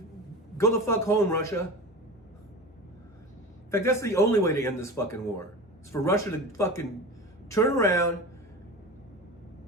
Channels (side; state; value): both; normal; correlation 0.31